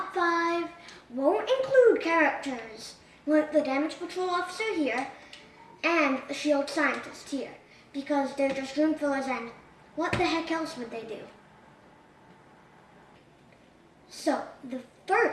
5 won't include characters like the Damage Patrol Officer here and the Shield Scientist here, because they're just room fillers and what the heck else would they do? So, the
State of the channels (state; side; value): identical; both; correlation 1.00